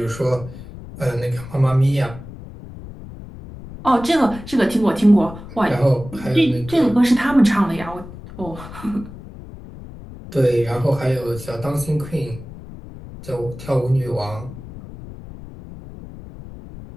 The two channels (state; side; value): noise; left; rumble, 14 dB below the sound